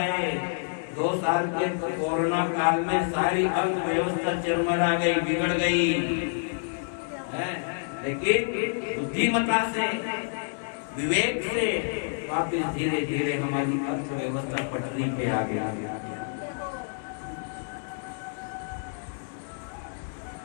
2 साल के कोरोना काल में सारी अर्थव्यवस्था चरमरा गई, बिगड़ गई, लेकिन बुद्धिमता से, विवेक से वापस धीरे धीरे हमारी अर्थव्यवस्था पटरी पे आ गई।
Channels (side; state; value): right; silent; digital silence